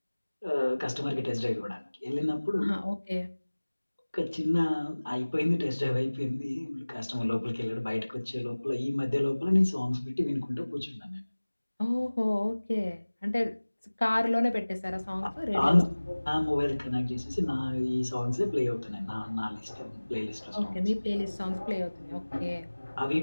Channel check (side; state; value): both; inverted; correlation -1.00